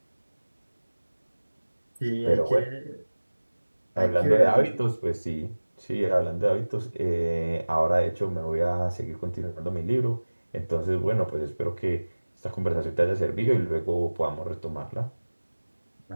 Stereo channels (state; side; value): inverted; both; correlation -1.00